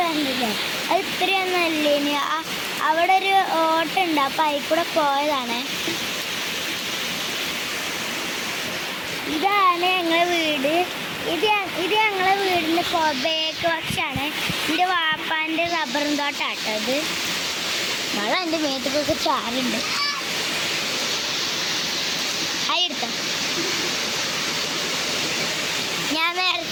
കണ്ടില്ലേ? അത് ഇത്രയൊന്നും അല്ലേ. ഇനി അവിടെ ഒരു ഓട്ടുണ്ട്, അപ്പം അതിൽ കൂടെ പോയതാണ്. ഇതാണ് ഞങ്ങളെ വീട്. ഇത് ഞങ്ങളെ വീടിൻ്റെ ബേക്ക് പക്ഷാണ്. എൻ്റെ വാപ്പാൻ്റെ റബ്ബറും തോട്ടാട്ടോ ഇത്. മഴ എൻ്റെ മേത്തേക്കൊക്കെ ചാറുണ്ട്. എടുത്ത ഞാൻ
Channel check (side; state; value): both; identical; correlation 1.00